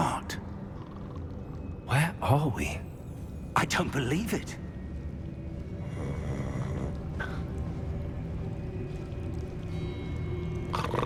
Where are we? I don't believe it.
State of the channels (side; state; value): both; identical; correlation 1.00